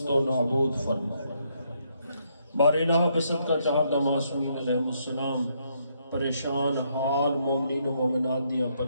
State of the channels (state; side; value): inverted; both; correlation -0.74